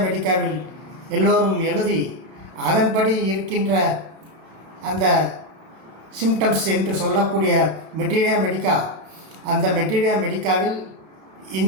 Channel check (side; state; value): left; late; 31 ms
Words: மெடிக்காவில் எல்லோரும் எழுதி அதன்படி இருக்கின்ற அந்த சிம்டம்ஸ் என்று சொல்லக்கூடிய மெட்டீரியா மெடிக்கா, அந்த மெட்டீரியா மெடிக்காவில்